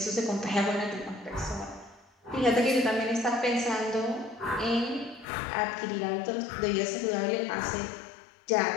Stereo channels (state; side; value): drops out; right; at 5.2 s